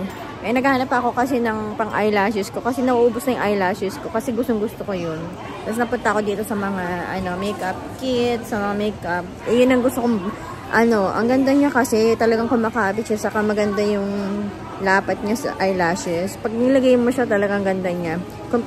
Eh, naghahanap ako kasi ng pang eyelashes ko. Kasi nauubos na yung eyelashes ko. Kasi gustong-gusto ko yun. Tapos napunta ako dito sa mga, makeup kit, sa mga makeup. Eh, yun ang gusto kong, ang ganda niya kasi talagang kumakabit siya. Saka maganda yung lapat niya sa eyelashes. Pag nilagay mo siya, talagang ganda niya.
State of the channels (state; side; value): identical; both; correlation 1.00